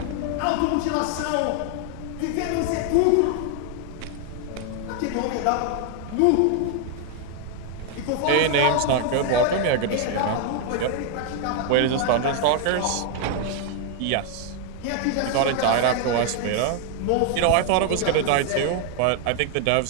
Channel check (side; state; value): both; different; correlation 0.00